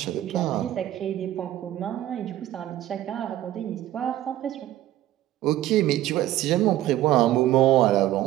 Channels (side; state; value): left; quieter; 13.8 dB